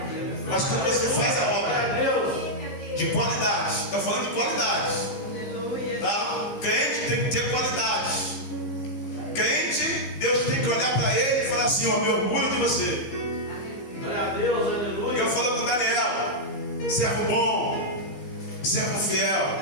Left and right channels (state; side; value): late; right; 15 ms